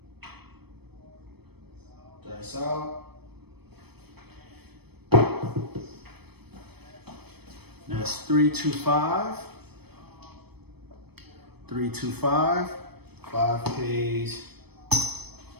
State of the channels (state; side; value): late; left; 0.97 ms